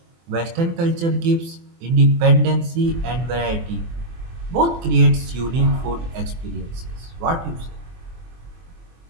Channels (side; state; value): left; late; 24 ms